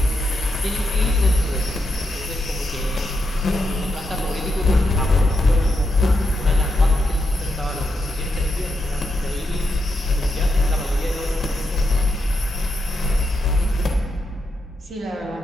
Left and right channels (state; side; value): normal; both; correlation 0.84